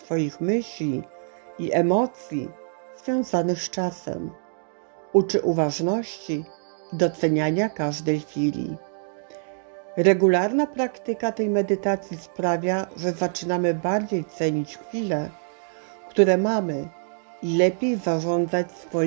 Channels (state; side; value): silent; left; digital silence